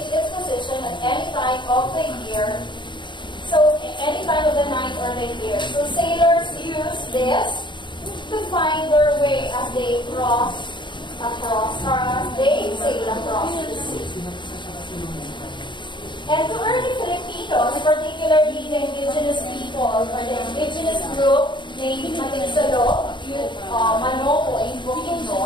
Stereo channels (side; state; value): right; late; 0.23 ms